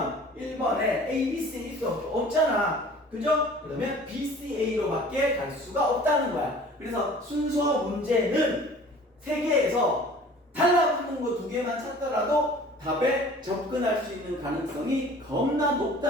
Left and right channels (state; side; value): normal; both; correlation 0.47